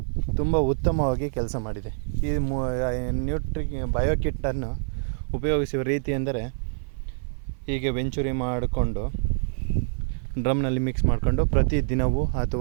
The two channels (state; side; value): silent; left; 56 dB below the other